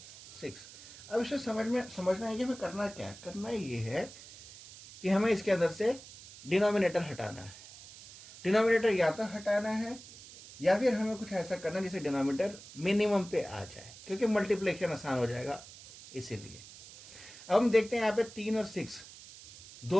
अब इसे समझना है कि हमें करना क्या है। करना ये है कि हमें इसके अंदर से डिनोमिनेटर हटाना है। डिनोमिनेटर या तो हटाना है या फिर हमें कुछ ऐसा करना है जिससे डिनोमिनेटर मिनिमम पे आ जाए, क्योंकि मल्टीप्लिकेशन आसान हो जाएगा इसीलिए। अब हम देखते हैं यहाँ पे 3 और 6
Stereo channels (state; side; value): noise; right; hiss, 17 dB below the sound